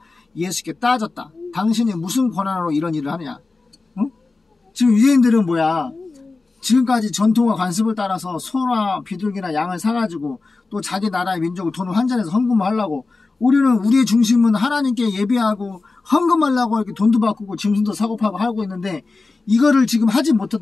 예수께 따졌다. 당신이 무슨 권한으로 이런 일을 하느냐? 응? 지금 유대인들은 뭐야? 지금까지 전통과 관습을 따라서 소나 비둘기나 양을 사가지고 또 자기 나라의 민족을 돈을 환전해서 헌금을 하려고, 우리는 우리의 중심은 하나님께 예배하고 헌금하려고 이렇게 돈도 바꾸고 짐승도 사고 파고 하고 있는데 이거를 지금 하지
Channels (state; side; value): quieter; right; 3.7 dB